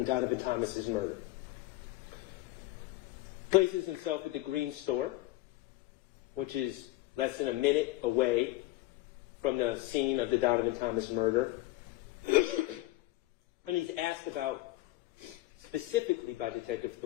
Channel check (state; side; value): quieter; right; 18.4 dB